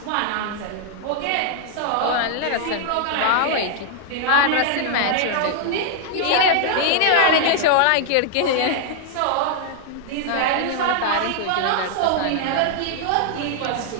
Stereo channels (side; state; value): both; different; correlation 0.00